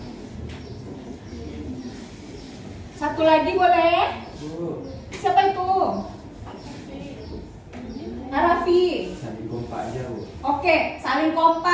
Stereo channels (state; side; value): identical; both; correlation 1.00